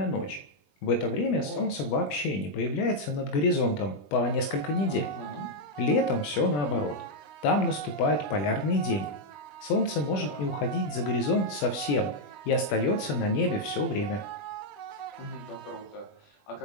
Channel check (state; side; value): late; right; 20 ms